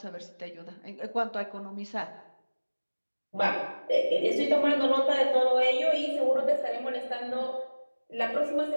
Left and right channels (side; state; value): both; inverted; correlation -1.00